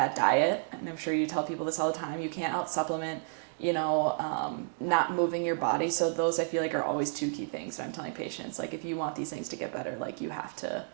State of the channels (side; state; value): left; silent; digital silence